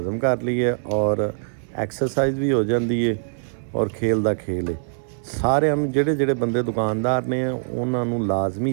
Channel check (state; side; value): silent; left; 58 dB below the other